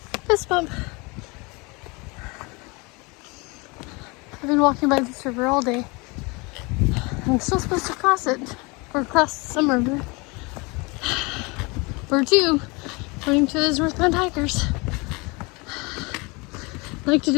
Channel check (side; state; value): right; quieter; 27.3 dB